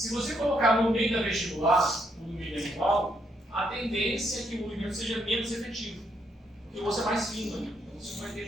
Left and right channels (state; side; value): normal; both; correlation 0.76